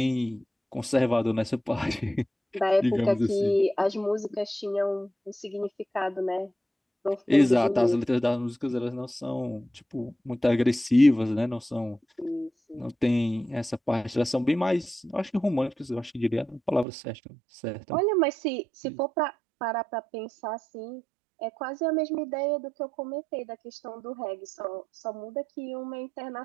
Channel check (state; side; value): drops out; left; at 16.9 s